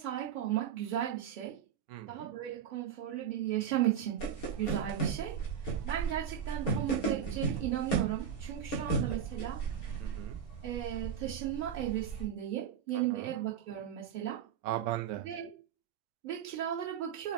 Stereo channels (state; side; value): quieter; left; 8.6 dB